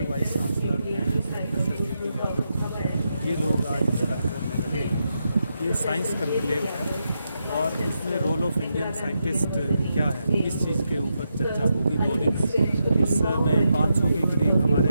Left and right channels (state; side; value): inverted; both; correlation -0.85